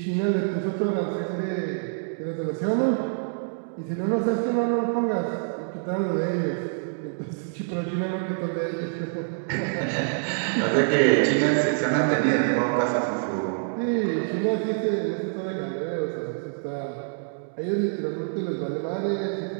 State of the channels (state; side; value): silent; left; digital silence